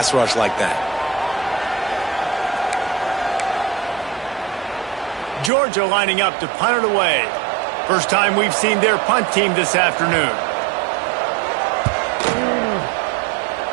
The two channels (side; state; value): left; drops out; at 5.5 s